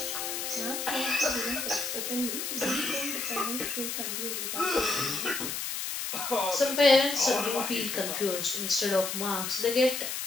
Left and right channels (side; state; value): left; noise; hiss, 3 dB below the sound